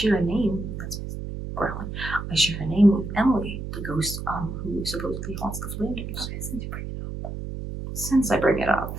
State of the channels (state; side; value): noise; right; hum, 7 dB below the sound